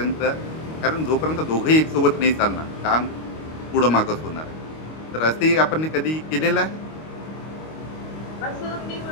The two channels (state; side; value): late; right; 25 ms